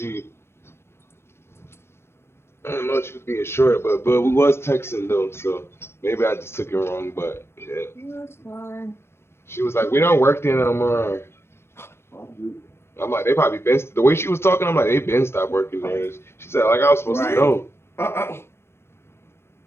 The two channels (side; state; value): right; late; 0.12 ms